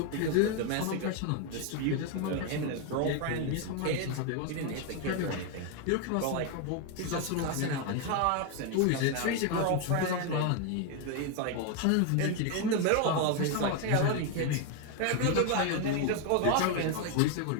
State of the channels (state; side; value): different; both; correlation 0.01